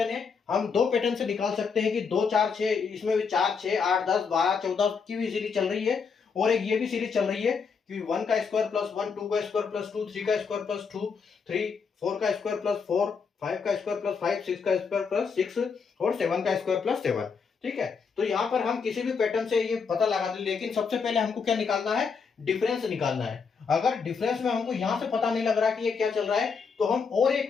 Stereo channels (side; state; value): right; quieter; 5.6 dB